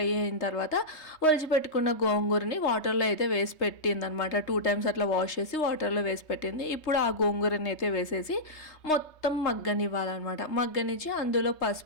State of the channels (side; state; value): right; late; 3.3 ms